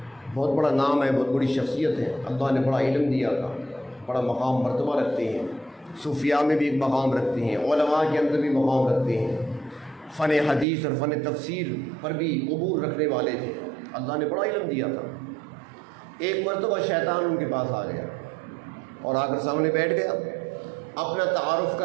بہت بڑا نام ہے، بہت بڑی شخصیت ہے، اللہ نے بڑا علم دیا تھا، بڑا مقام مرتبہ رکھتے ہیں، صوفیاء میں بھی ایک مقام رکھتے ہیں، علماء کے اندر بھی مقام رکھتے ہیں، فن حدیث اور فن تفسیر پر بھی عبور رکھنے والے تھے، اللہ نے بڑا علم دیا تھا۔ ایک مرتبہ شیطان ان کے پاس آ گیا اور آ کر سامنے بیٹھ گیا، اپنا تعارف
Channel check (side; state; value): left; drops out; at 10.7 s